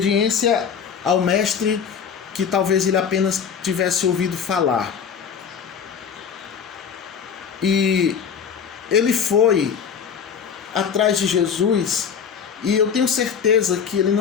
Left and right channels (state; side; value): quieter; right; 7.0 dB